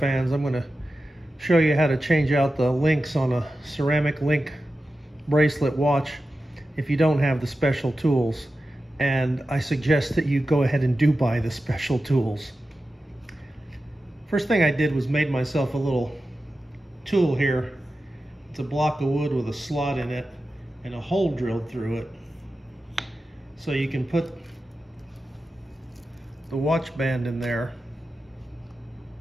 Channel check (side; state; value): both; normal; correlation 0.93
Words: I'm going to show you how to change out the links on a ceramic link bracelet watch if you don't have the special tools. And I suggest that you go ahead and do buy the special tools. First thing I did was made myself a little tool here. It's a block of wood with a slot in it and a hole drilled through it. So you can put the watch band in there